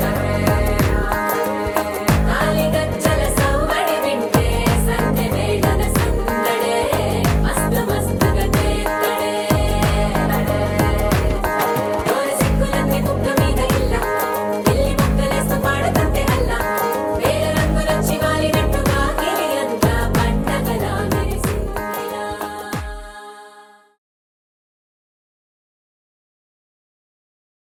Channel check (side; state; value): both; identical; correlation 1.00